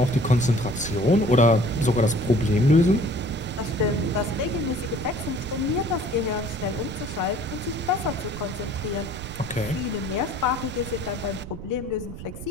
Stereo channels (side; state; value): right; noise; rumble, 11 dB below the sound